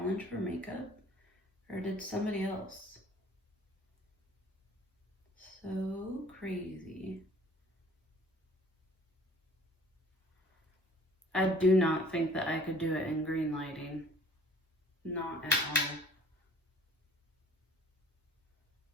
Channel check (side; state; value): both; normal; correlation 0.51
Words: for makeup? Or did somebody else? So crazy. I do not think that I could do it in green lighting. Not at all.